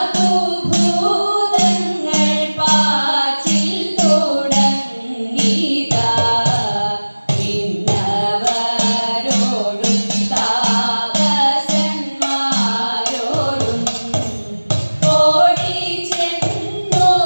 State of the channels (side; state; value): both; inverted; correlation -1.00